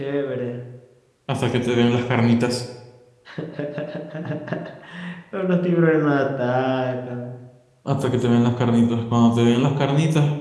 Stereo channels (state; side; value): identical; both; correlation 1.00